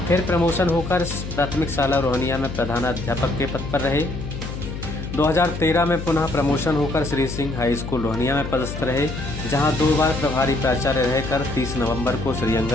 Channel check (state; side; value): noise; left; hum, 7 dB below the sound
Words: फिर प्रमोशन होकर प्राथमिक शाला रोहनिया में प्रधानाध्यापक के पद पर रहे। 2013 में पुनः प्रमोशन होकर श्री सिंह हाई स्कूल रोहनिया में पदस्थ रहे, जहां 2 बार प्रभारी प्राचार्य रहकर 30 नवंबर को श्री